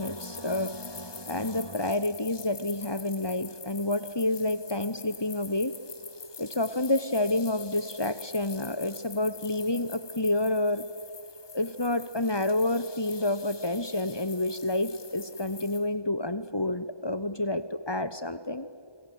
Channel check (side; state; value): right; late; 1.2 ms